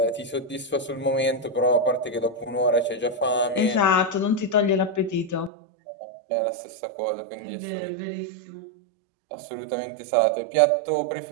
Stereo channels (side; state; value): left; drops out; at 5.5 s